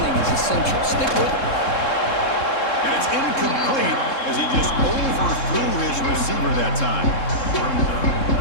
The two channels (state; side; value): late; right; 3.7 ms